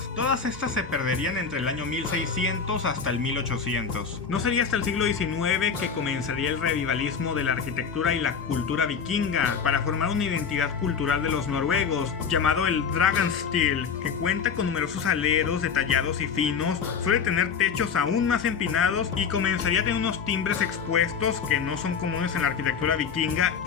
Todas estas se perderían entre el año 1600 hasta el 1800. No sería hasta el siglo XIX que comenzaría el revivalismo de la arquitectura y la cultura vikinga, para formar una identidad cultural de los noruegos, llamado el Dragonstil, que cuenta con numerosos aleros detallados y finos, suele tener techos aún más empinados y comenzaría a tener unos timbres expuestos que no son comunes en la arquitectura vikinga.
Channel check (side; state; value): right; quieter; 6.4 dB